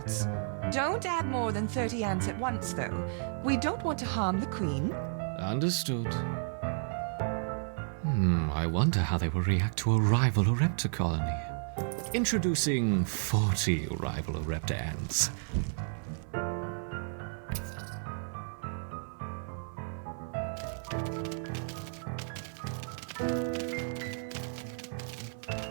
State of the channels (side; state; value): left; silent; 56 dB below the other